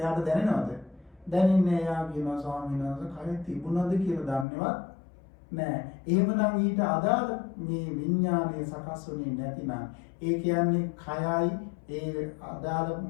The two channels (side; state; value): right; drops out; at 4.5 s